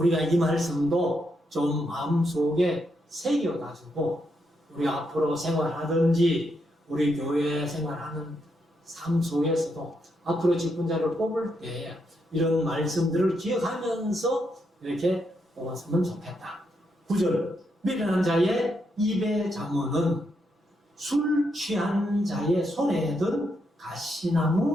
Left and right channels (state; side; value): normal; both; correlation 0.80